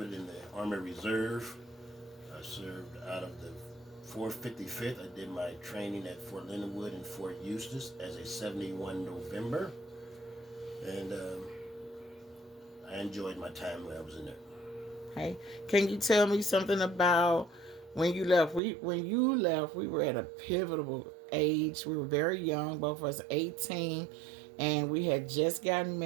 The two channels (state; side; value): drops out; left; at 18.6 s